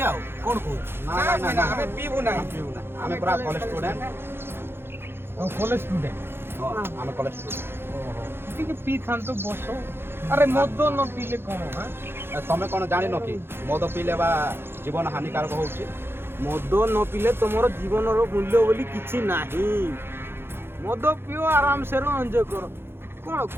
आउ कोन को ना हमें पीबू ना हमें पूरा कॉलेज स्टूडेंट हम कॉलेज स्टूडेंट हमें कॉलेज स्टूडेंट टिके पी खान तो बसो अरे मद न पीले कोन हां तमे कोन जानि न कि मद पीले बा जीवन हानिकारक होउची मद न पीले तुमर जीवन रो मूल्य बोली किछि नाही मद पियो आराम से रो एंजॉय करो कोन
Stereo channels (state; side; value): late; left; 0.11 ms